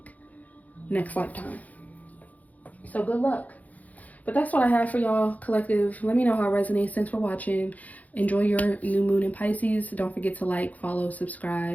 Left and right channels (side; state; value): right; late; 0.076 ms